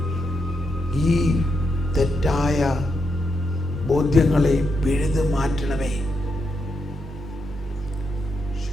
ഈ തെറ്റായ ബോധ്യങ്ങളെ പിഴുതു മാറ്റണമേ.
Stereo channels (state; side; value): normal; both; correlation 0.82